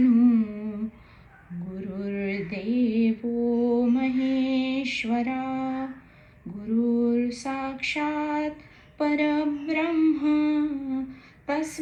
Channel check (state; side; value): identical; both; correlation 1.00